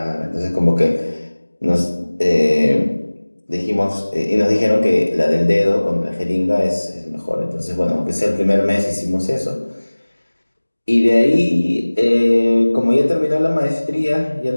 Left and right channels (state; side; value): inverted; both; correlation -1.00